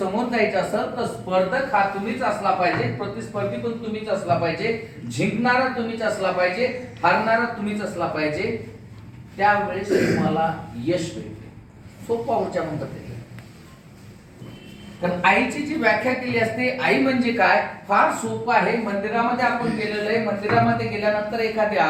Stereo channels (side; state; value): both; identical; correlation 1.00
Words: जायचं असेल तर स्पर्धक हा तुम्हीच असला पाहिजे, प्रतिस्पर्धी पण तुम्हीच असला पाहिजे, जिंकणारा तुम्हीच असला पाहिजे, हारणारा तुम्हीच असला पाहिजे. त्यावेळेस तुम्हाला यश मिळते. सोपा ऊर्जा मंत्र आहे. कारण आईची जी व्याख्या केली असते, आई म्हणजे काय, फार सोपं आहे. मंदिरामध्ये आपण गेलेलो आहे, मंदिरामध्ये गेल्यानंतर एखादी